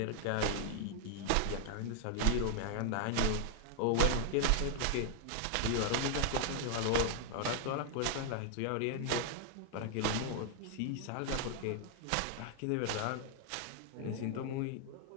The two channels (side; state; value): both; different; correlation 0.00